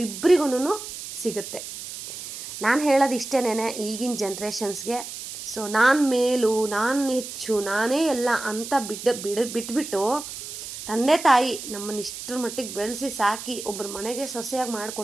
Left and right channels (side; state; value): right; noise; hiss, 10 dB below the sound